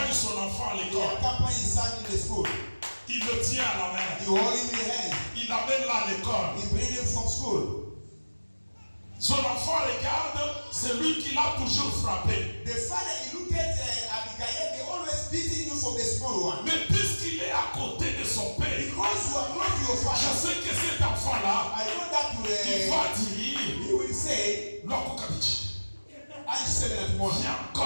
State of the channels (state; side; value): inverted; both; correlation -1.00